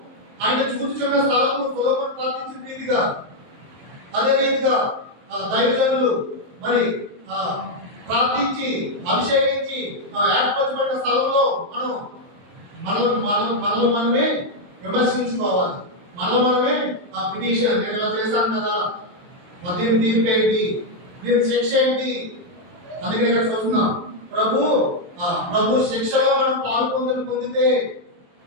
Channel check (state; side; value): late; left; 23 ms